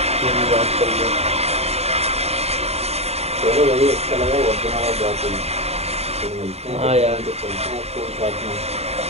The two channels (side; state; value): left; late; 0.30 ms